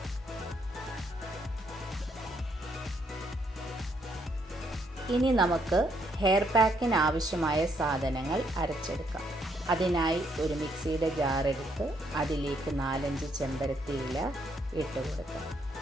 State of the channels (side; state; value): both; normal; correlation 0.73